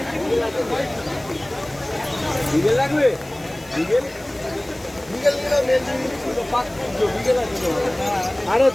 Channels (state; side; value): noise; left; hiss, 23 dB below the sound